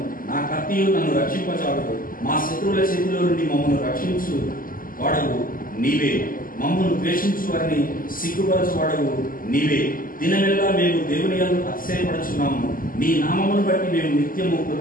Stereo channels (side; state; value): right; late; 0.41 ms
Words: నా కత్తియు నన్ను రక్షింపచాలదు. మా శత్రువుల చేతిలో నుండి మమ్మల్ని రక్షించు వాడవు నీవే. మమ్మల్ని ద్వేషించు వారిని సిగ్గుపరచువాడవు నీవే. దినమెల్లా మేము దేవుని యందు అతిశయపడుచున్నాము. నీ నామమును బట్టి మేము నిత్యము